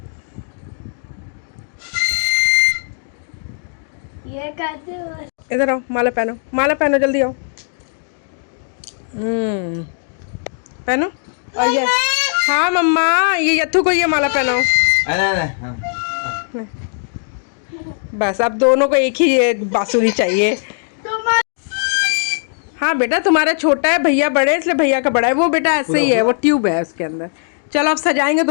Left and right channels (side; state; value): right; silent; 65 dB below the other